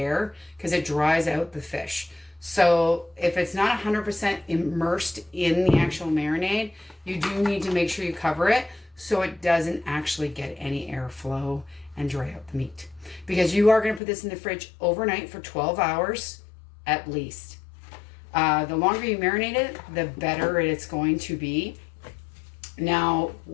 because it dries out the fish. So if it's not 100% immersed in the actual marinade, you do need to make sure you cover it so it doesn't actually get any airflow and dry out the meat. Because you are going to put this in the fridge overnight for 12 hours at least. The longer you marinate it, the better it's going to be. Now,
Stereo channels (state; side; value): drops out; right; at 14.0 s